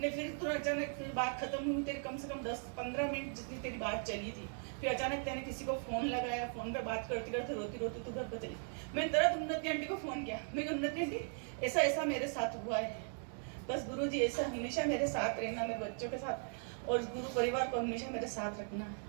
फिर तू अचानक फिर बात खत्म हुई, तेरी कम से कम 10-15 मिनट जितनी तेरी बात चली थी। फिर अचानक तेने किसी को फोन लगाया, फोन पे बात करते करते रोती तू घर पर चली। मैंने तरह उन्नति आंटी को फोन किया, मैं उन्नति आंटी ऐसा ऐसा मेरे साथ हुआ है, बस गुरु जी ऐसा हमेशा मेरे साथ रहना, मेरे बच्चों के साथ और गुरु परिवार को हमेशा मेरे साथ रखना।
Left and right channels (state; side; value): silent; left; 52 dB below the other